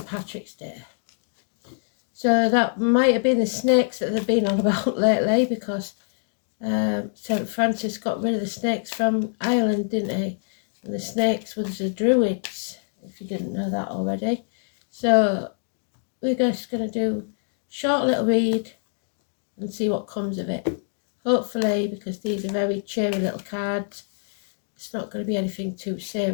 Patrick's Day. So that might have been the snakes that they've been on about lately, because St Francis got rid of the snakes from Ireland, didn't he? And the snakes were the druids, if you didn't know that already. So we're just going to do a short little read and see what comes of it. Hopefully, because these are very cheery little cards, it's not going to be anything too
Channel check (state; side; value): silent; right; digital silence